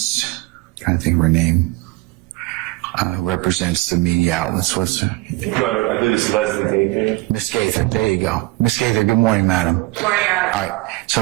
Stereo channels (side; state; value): left; quieter; 20.7 dB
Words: I'm trying to think of her name, represents the media outlets. What's her? I believe it's Leslie Gaither. Miss Gaither, there you go. Miss Gaither, good morning, madam. Good morning, Your Honor. All right, so